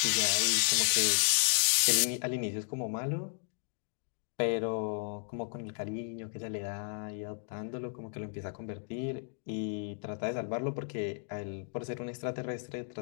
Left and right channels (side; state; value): right; silent; 56 dB below the other